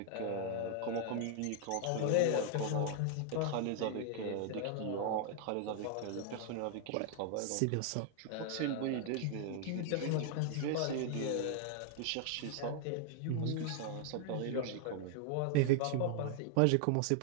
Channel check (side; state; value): both; different; correlation 0.00